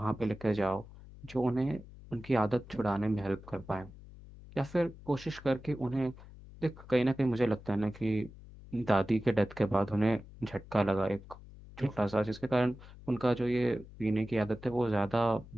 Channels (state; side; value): noise; left; hum, 18 dB below the sound